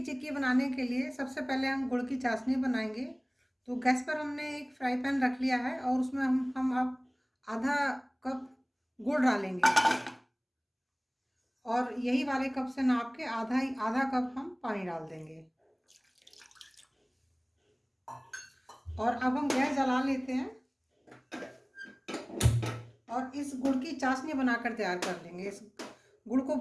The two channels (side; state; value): both; identical; correlation 1.00